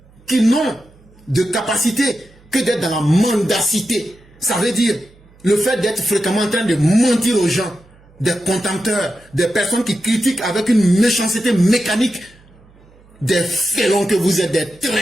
qui n'ont de capacité que d'être dans la mendacité. Ça veut dire le fait d'être fréquemment en train de mentir aux gens, des contempteurs, des personnes qui critiquent avec une méchanceté mécanique, des félons que vous êtes, des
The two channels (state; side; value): noise; right; hum, 28 dB below the sound